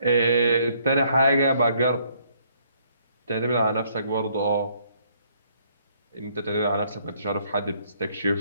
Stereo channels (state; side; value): inverted; both; correlation -0.67